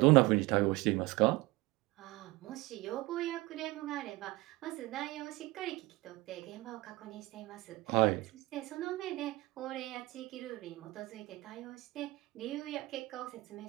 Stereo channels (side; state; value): left; quieter; 21.1 dB